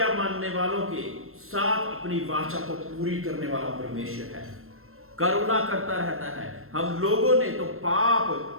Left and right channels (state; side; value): late; left; 0.62 ms